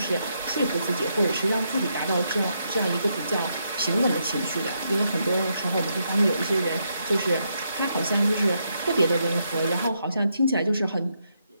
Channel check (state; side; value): inverted; both; correlation -0.79